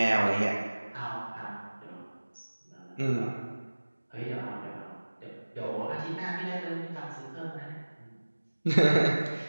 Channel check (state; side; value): inverted; both; correlation -1.00